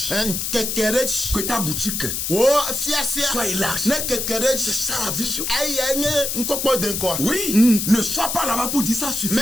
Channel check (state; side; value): noise; left; hiss, 2 dB below the sound